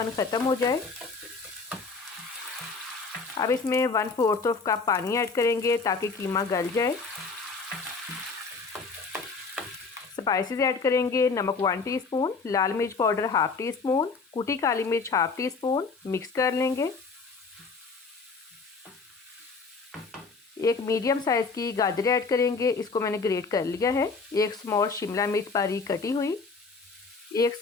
ख़त्म हो जाए। अब इसमें 1/4 कप पानी ऐड करेंगे ताकि कीमा गल जाए। स्पाइसेस ऐड करेंगे। नमक 1 टीस्पून, लाल मिर्च पाउडर 1/2 टीस्पून, कुटी काली मिर्च 1/2 टीस्पून। मिक्स कर लेंगे। एक मीडियम साइज़ की गाजर ऐड करेंगे, इसको मैंने ग्रेट कर लिया है। एक स्मॉल शिमला मिर्च बारीक कटी हुई। एक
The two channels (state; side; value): quieter; right; 4.5 dB